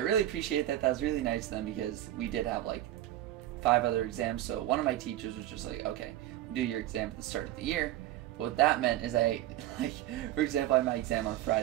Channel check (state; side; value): quieter; left; 13.9 dB